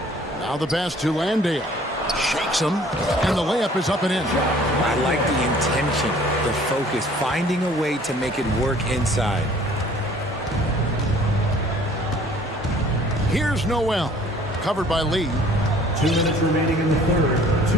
Now the pass to Landale. Shakes him, and the layup is up and in. I like the intention, the focus, finding a way to make it work inside. Here's Noel, covered by Lee. 2 minutes remaining in the third.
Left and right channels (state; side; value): normal; both; correlation 0.54